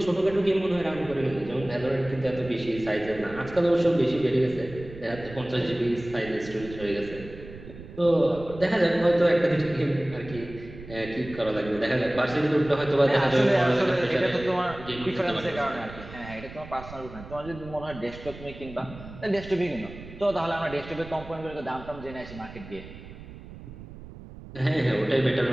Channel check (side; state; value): right; noise; rumble, 15 dB below the sound